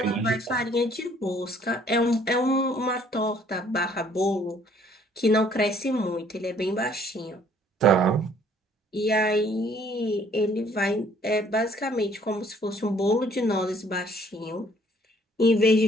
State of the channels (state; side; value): normal; both; correlation 0.60